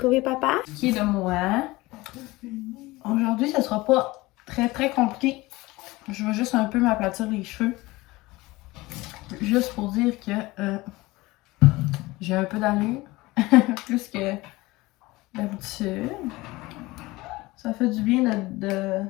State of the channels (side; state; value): right; quieter; 20.6 dB